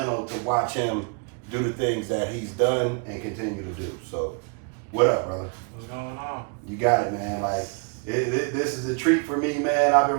to watch him do the things that he's done and continue to do. So, what up, brother? What's going on? You got it, man. Like, this is a treat for me, man. I've been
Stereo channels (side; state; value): left; quieter; 36.6 dB